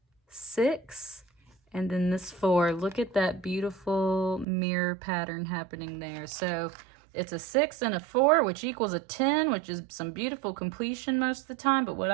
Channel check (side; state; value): left; drops out; at 4.5 s